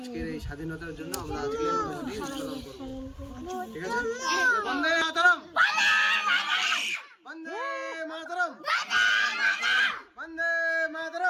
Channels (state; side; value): identical; both; correlation 1.00